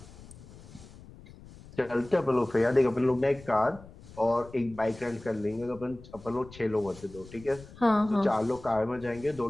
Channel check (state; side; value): noise; left; rumble, 19 dB below the sound